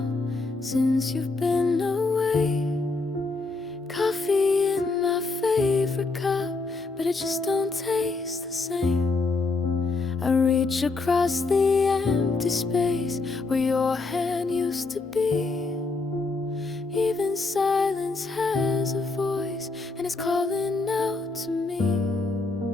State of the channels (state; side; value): quieter; right; 3.7 dB